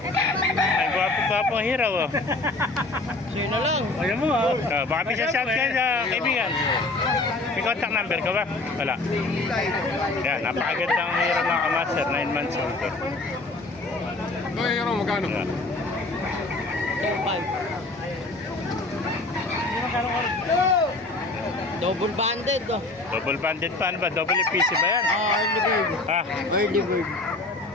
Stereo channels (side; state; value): right; quieter; 3.1 dB